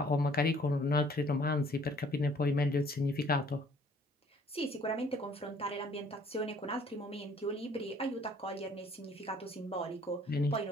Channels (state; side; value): normal; both; correlation 0.57